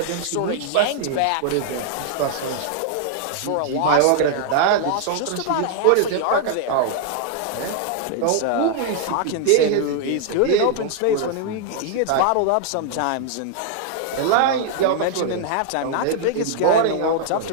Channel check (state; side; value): different; both; correlation -0.01